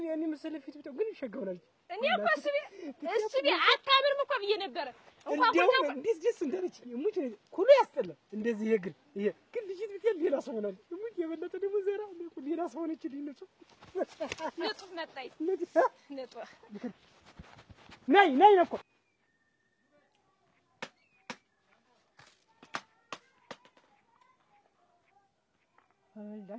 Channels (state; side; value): identical; both; correlation 1.00